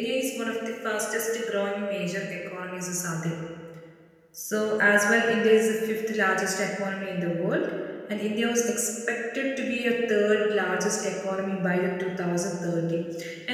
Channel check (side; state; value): both; identical; correlation 1.00